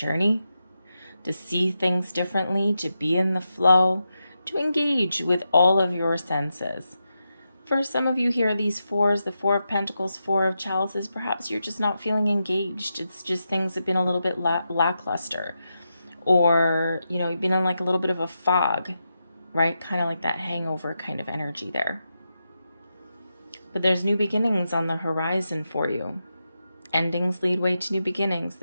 to see things differently, to be in the flow, to engage with all of your senses. For some of you here, these fours, the Four of Pentacles, Four of Chalices, perhaps you're just not feeling engaged. It's just things have been a little bit lackluster. Or, you know, you've been in like a little bit of a fog, right? Kind of like that hangover kind of energy there. But there's new beginnings on the horizon for you. Endings lead way to new beginnings.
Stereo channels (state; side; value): inverted; both; correlation -0.87